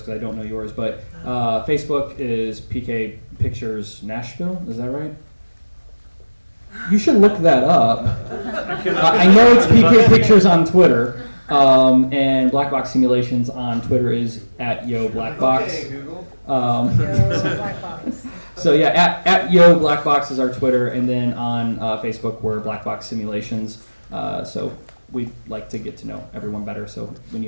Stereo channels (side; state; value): both; inverted; correlation -1.00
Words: because I don't know yours. But Facebook is PK Pictures Nashville. Is that right? You should look that up. I know it's PK Pictures on Twitter, and Black Box Simulations on Twitter is at Yo Black Box. Okay, Google. Black box. So yeah, at Yo Black Box is our Twitter, and then on Facebook we're Black Box Simulations. So we'd like to get to know everyone better. So when